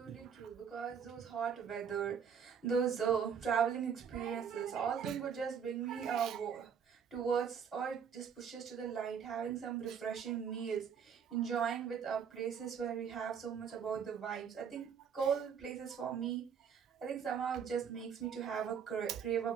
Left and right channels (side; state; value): left; quieter; 7.3 dB